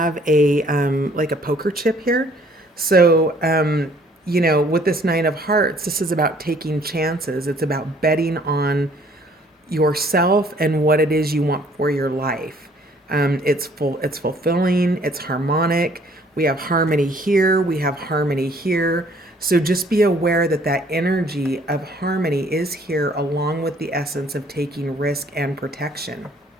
a like a poker chip here. So, with this 9 of hearts, this is about taking chances. It's about betting on yourself and what it is you want for your life. It's fulfilling, it's harmonic. We have harmony here, we have harmony here. So just be aware that energy of harmony is here along with the essence of taking risk and protection.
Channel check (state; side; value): normal; both; correlation 0.59